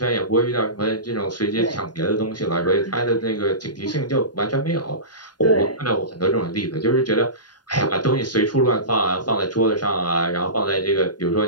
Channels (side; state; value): right; late; 0.70 ms